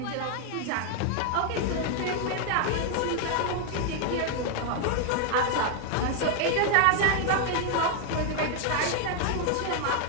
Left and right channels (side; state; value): both; different; correlation 0.01